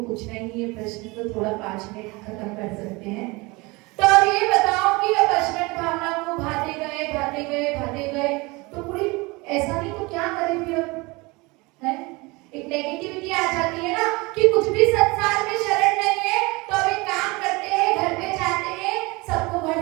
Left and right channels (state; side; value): quieter; left; 24.7 dB